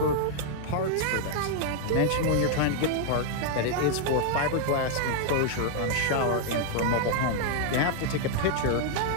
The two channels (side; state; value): both; different; correlation 0.00